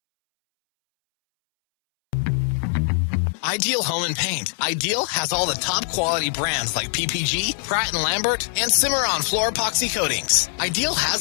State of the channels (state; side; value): silent; right; 64 dB below the other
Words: Ideal Home and Paint. Ideal has all the top quality brands like PPG, Pratt & Lambert, and Cimarron floor epoxy coatings. Ideal